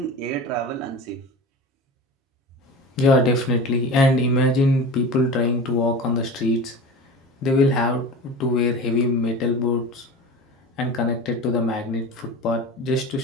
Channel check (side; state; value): both; normal; correlation 0.32